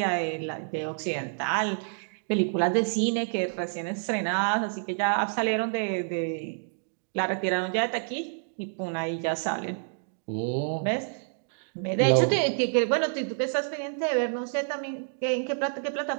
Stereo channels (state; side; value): silent; left; digital silence